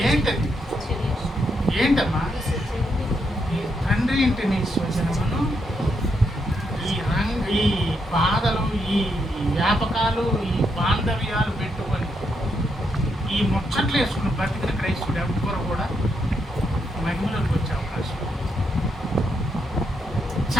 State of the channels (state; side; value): normal; both; correlation 0.79